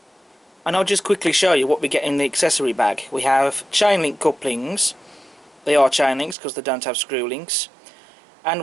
And I'll just quickly show you what we get in the accessory bag. We have chain link couplings. They are chain links because they don't have screw links. And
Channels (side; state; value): left; drops out; at 6.4 s